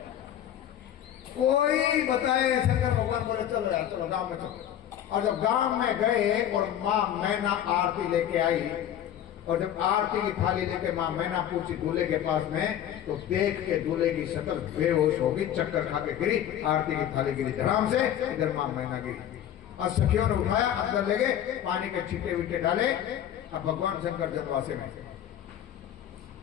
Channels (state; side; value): quieter; right; 10.7 dB